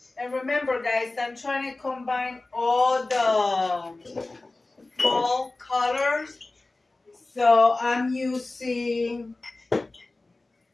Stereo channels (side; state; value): right; quieter; 3.1 dB